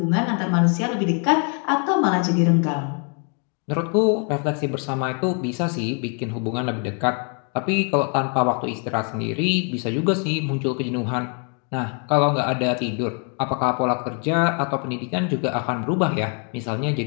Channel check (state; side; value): quieter; right; 37.9 dB